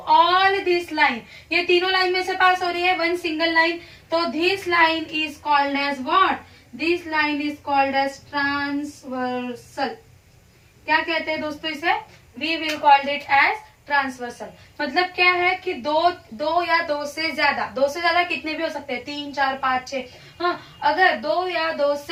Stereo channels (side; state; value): both; identical; correlation 1.00